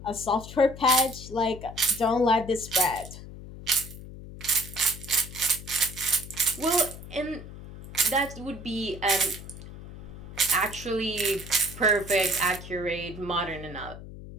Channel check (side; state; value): left; noise; hum, 13 dB below the sound